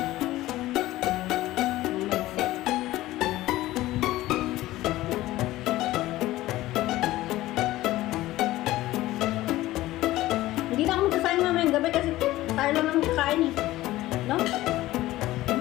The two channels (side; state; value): right; quieter; 16.5 dB